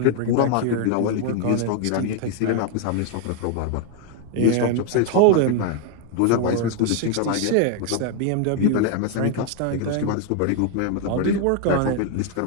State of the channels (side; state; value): both; different; correlation 0.00